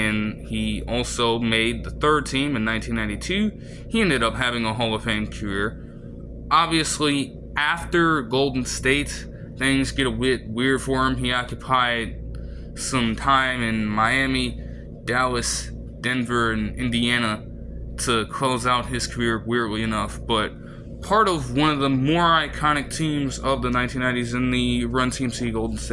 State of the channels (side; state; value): both; identical; correlation 1.00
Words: he also made the third team in 1992. He ended up having a Hall of Fame career. Obviously, after Golden State, things get a bit weird for him. He occupied some time in Miami, Dallas, Denver, and Indiana to close out his career, weirdly enough. But part of one of the more iconic teams of the 1990s in the Run TMC Golden